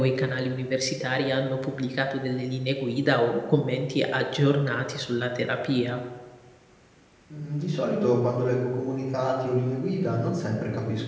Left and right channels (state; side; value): identical; both; correlation 1.00